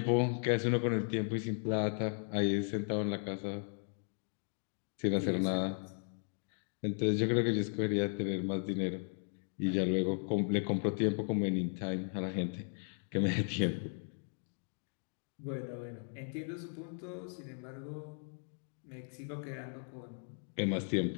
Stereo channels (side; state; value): right; silent; 53 dB below the other